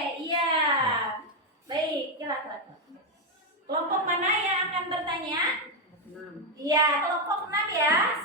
iya. Baik, silakan. Kelompok mana yang akan bertanya? 6. Iya, kelompok 6 ya.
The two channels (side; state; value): both; normal; correlation 0.05